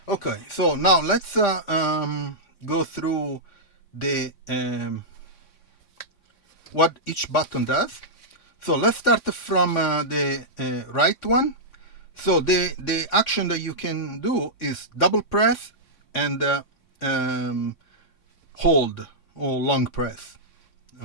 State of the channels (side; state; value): right; late; 3.8 ms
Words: Okay, so now let's go through the what each button does. So let's start from the right one. So the action that you can do is double press and hold or long press.